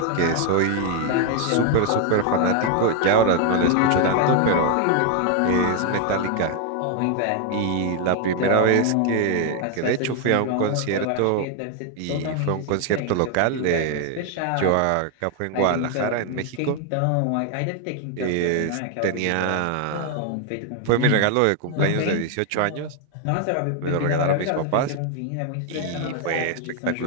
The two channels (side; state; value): both; different; correlation 0.01